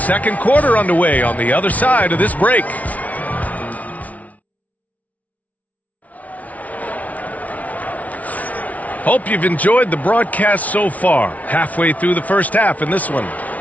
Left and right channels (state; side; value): late; right; 0.070 ms